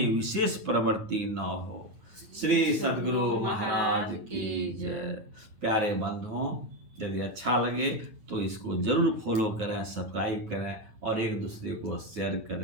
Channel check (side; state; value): left; late; 9.4 ms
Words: विशेष प्रवृत्ति न हो। श्री सद्गुरु महाराज की जय। प्यारे बंधुओं, यदि अच्छा लगे तो इसको जरूर फॉलो करें, सब्सक्राइब करें और एक दूसरे को शेयर